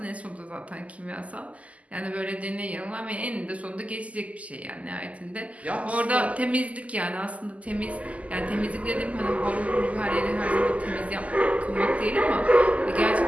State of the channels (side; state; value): left; late; 0.070 ms